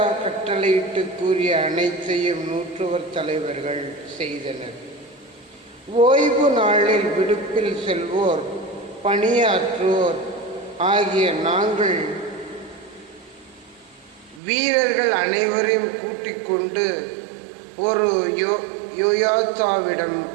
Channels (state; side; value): drops out; left; at 14.4 s